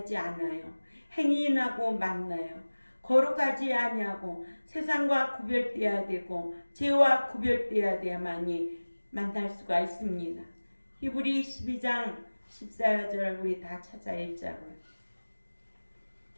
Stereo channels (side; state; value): both; inverted; correlation -1.00